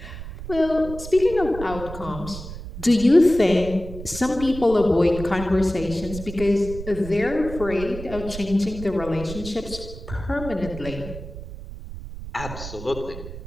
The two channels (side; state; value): right; noise; rumble, 11 dB below the sound